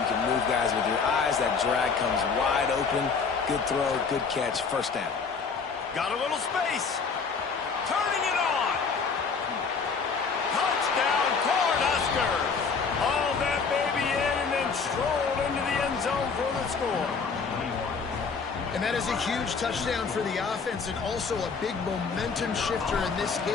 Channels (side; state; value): right; quieter; 5.3 dB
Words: can move guys with your eyes. That drag comes wide open. Good throw, good catch, first down. Got a little space. Turning it on. Touchdown, Cornhuskers. Haul that baby in and then stroll into the end zone for the score. And that is a huge touchdown for the offense and also a big momentum shifter in this